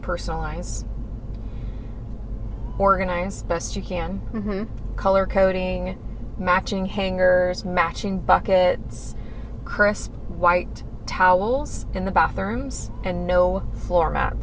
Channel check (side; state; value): both; identical; correlation 1.00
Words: organize best you can, Mm-hmm. color coding, matching hangers, matching buckets, crisp white towels in the bathrooms, and no floor